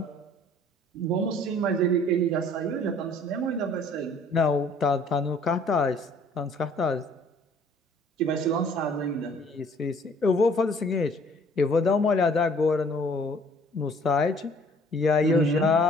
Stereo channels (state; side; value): normal; both; correlation 0.56